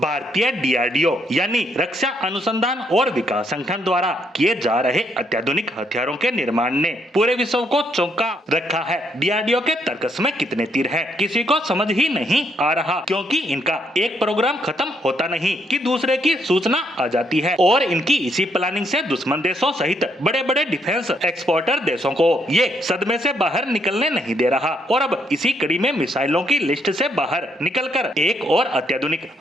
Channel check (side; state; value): both; normal; correlation 0.73